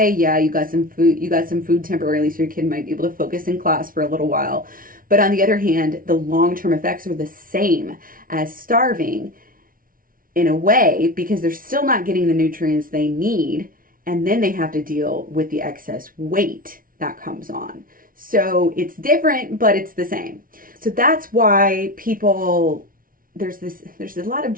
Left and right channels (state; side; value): late; left; 0.41 ms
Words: yeah, you got some food temporarily so your kid might be able to focus in class for a little while. But on the other hand, the long-term effects are the same as starving in a way, because they're still not getting the nutrients they need, and then they have to deal with the excess weight that comes on. So it's different, but it's the same. So that's why there's a lot of